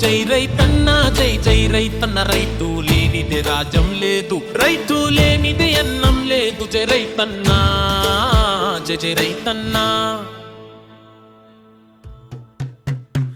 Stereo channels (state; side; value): identical; both; correlation 1.00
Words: జై రైతన్న జై జై రైతన్న రైతు లేనిదే రాజ్యం లేదు రైతు లేనిదే అన్నం లేదు జై రైతన్న జై జై రైతన్న